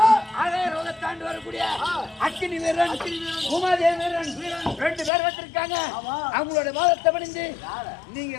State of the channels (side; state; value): right; drops out; at 5.1 s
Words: ஆகாய லோகத்தாண்டு வரக்கூடிய அக்கினி வீரன் உமாதேவி வீரன் 2 பேர் வந்திருக்காங்க. அவங்களோட வாதத்தை பணிந்து நீங்க